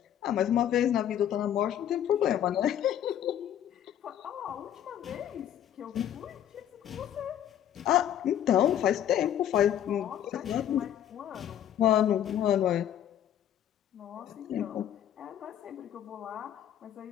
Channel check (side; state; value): right; quieter; 10.6 dB